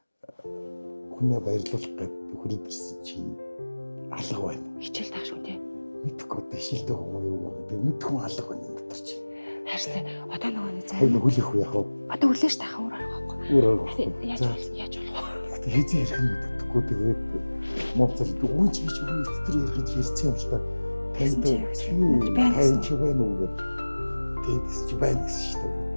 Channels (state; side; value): inverted; both; correlation -1.00